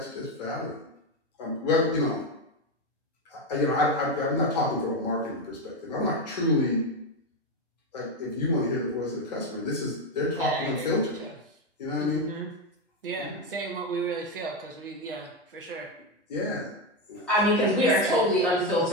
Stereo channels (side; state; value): both; normal; correlation 0.10